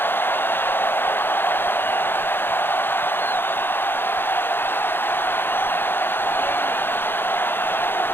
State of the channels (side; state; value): right; late; 0.10 ms